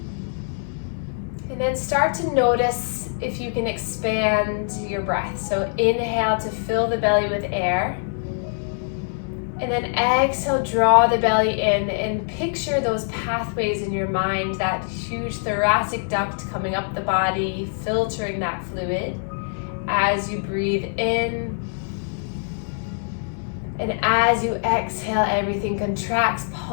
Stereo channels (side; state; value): right; silent; 63 dB below the other